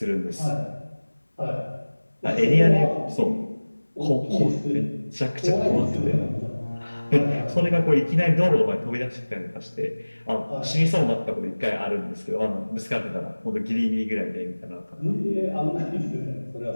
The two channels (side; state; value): both; inverted; correlation -1.00